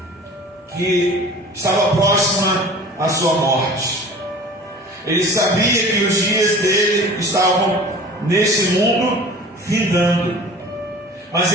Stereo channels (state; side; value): normal; both; correlation 0.42